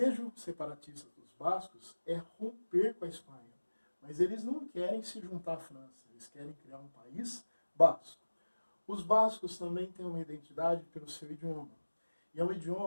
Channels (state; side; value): inverted; both; correlation -1.00